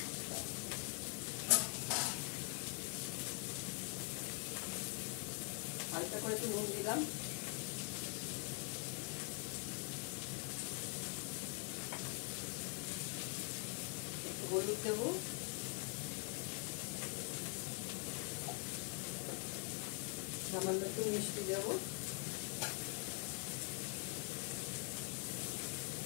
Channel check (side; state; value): right; quieter; 36.6 dB